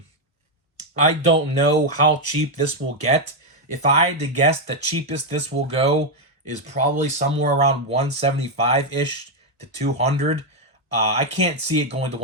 I don't know how cheap this will get. If I had to guess, the cheapest this will go is probably somewhere around 175-ish to 200. I can't see it going to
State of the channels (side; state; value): both; normal; correlation 0.02